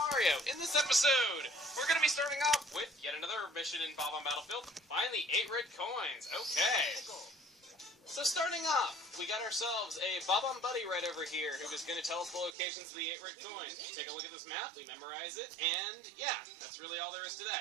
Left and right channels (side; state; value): left; drops out; at 12.6 s